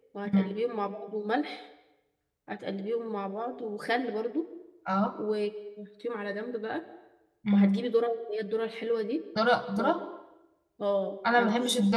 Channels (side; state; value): both; identical; correlation 1.00